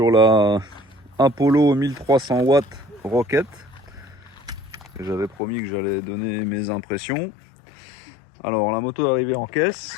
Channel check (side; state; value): right; drops out; at 5.4 s